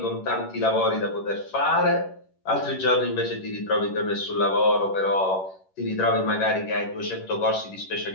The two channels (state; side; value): late; right; 11 ms